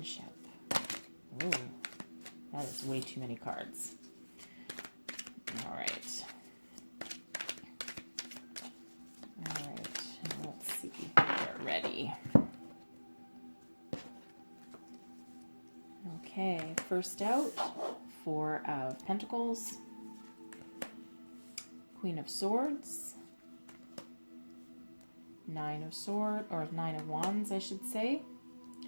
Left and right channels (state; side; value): inverted; both; correlation -1.00